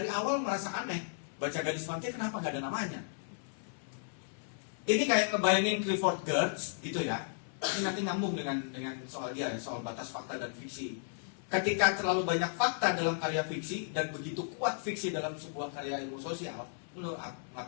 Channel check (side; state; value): right; silent; 55 dB below the other